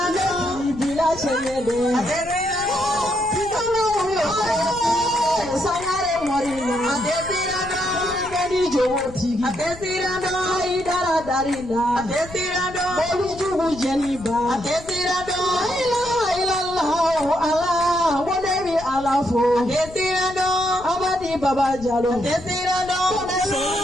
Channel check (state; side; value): noise; left; rumble, 16 dB below the sound